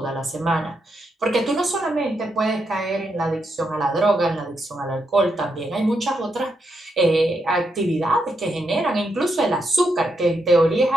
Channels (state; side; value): normal; both; correlation 0.82